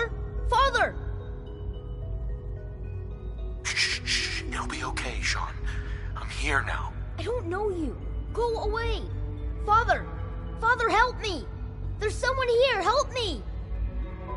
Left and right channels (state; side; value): identical; both; correlation 1.00